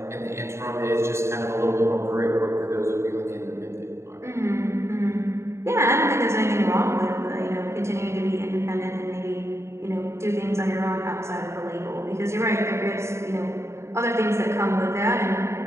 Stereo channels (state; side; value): late; left; 0.13 ms